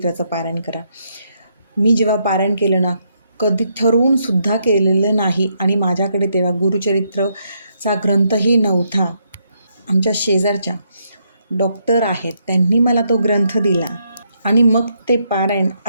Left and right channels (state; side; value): inverted; both; correlation -0.76